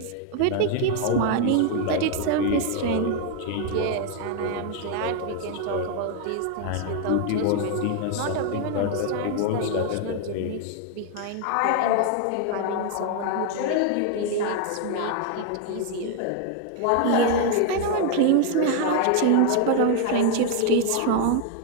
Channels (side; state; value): both; different; correlation 0.00